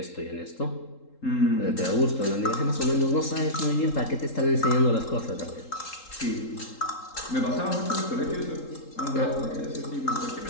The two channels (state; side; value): late; right; 3.8 ms